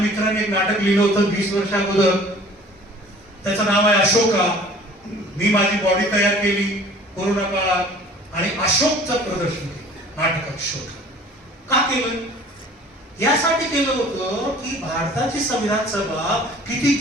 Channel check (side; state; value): both; normal; correlation 0.49